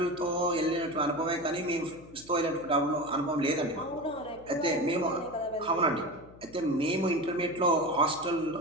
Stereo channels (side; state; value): left; noise; hum, 22 dB below the sound